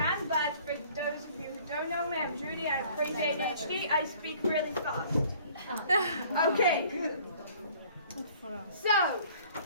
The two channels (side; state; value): both; inverted; correlation -0.54